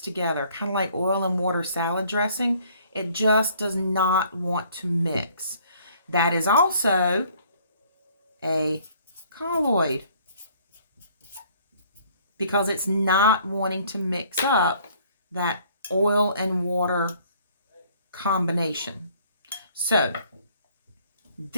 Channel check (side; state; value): both; inverted; correlation -0.59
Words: together, kind of like oil and water salad dressing. It just does not want to mix. That is also a colloid because it's not wanting to mix up that oil and water combination. So